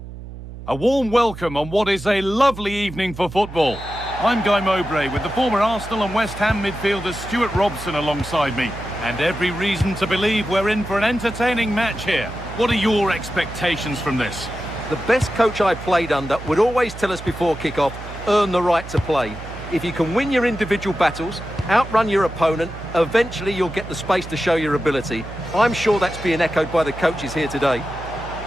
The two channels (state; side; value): noise; right; hum, 12 dB below the sound